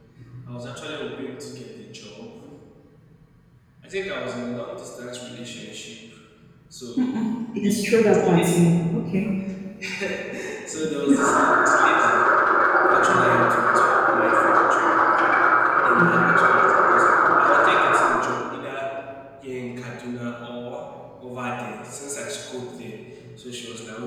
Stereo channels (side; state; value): both; identical; correlation 1.00